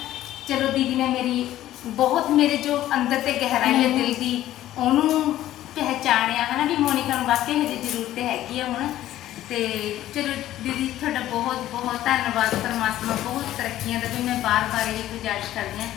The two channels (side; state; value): right; quieter; 13.6 dB